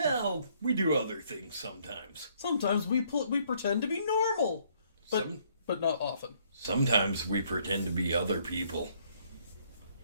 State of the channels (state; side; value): inverted; both; correlation -0.66